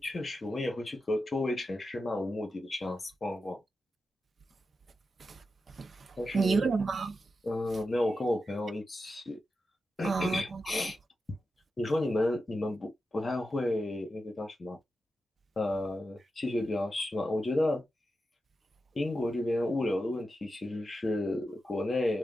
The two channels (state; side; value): normal; both; correlation 0.90